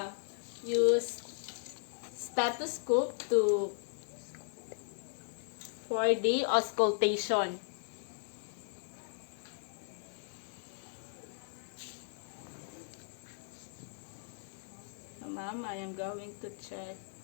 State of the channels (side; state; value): right; silent; digital silence